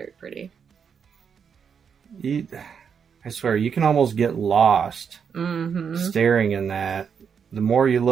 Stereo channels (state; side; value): quieter; left; 6.8 dB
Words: pretty. I swear, you can almost get lost staring in that. The more you